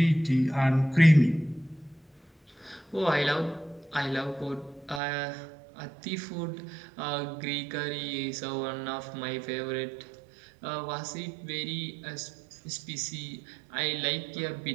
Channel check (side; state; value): left; drops out; at 5.0 s